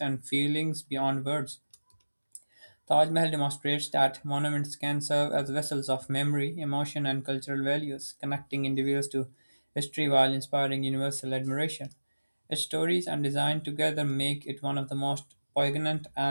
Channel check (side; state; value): both; inverted; correlation -1.00